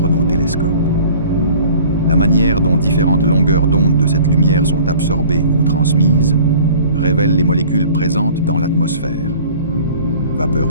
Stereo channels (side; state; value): both; inverted; correlation -0.48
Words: nos télescopes. La manière dont différentes longueurs d'onde de cette lumière sont absorbées ou transmises révèle les molécules présentes dans l'atmosphère.